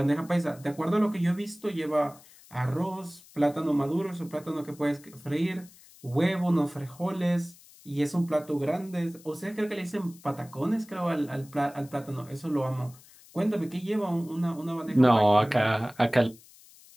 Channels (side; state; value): left; noise; hiss, 24 dB below the sound